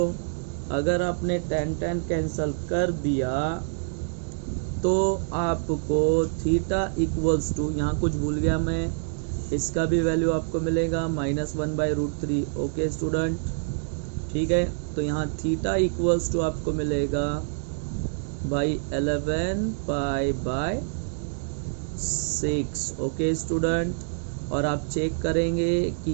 अगर आपने tan कैंसिल कर दिया तो आपको थीटा इक्वल्स टू, यहाँ कुछ भूल गया मैं, इसका भी वैल्यू आपको मिलेगा -1/√3। ओके स्टूडेंट, ठीक है। तो यहाँ थीटा इक्वल्स टू आपको मिलेगा भाई 11π/6। ओके स्टूडेंट, और आप चेक करेंगे कि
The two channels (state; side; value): silent; left; digital silence